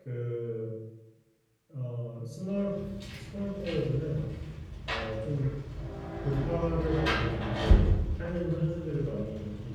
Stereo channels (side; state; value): both; identical; correlation 1.00